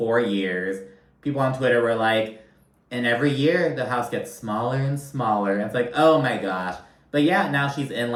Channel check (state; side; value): identical; both; correlation 1.00